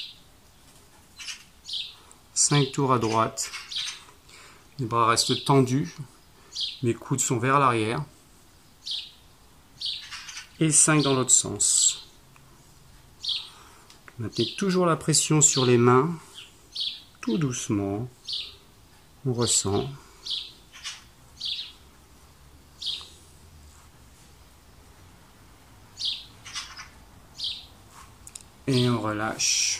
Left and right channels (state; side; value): identical; both; correlation 1.00